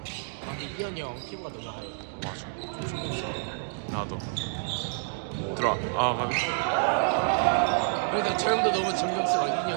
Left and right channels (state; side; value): silent; left; digital silence